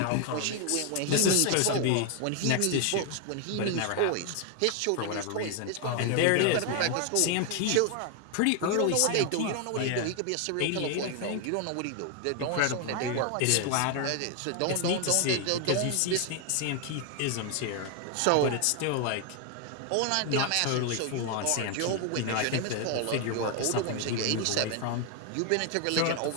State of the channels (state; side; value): different; both; correlation 0.00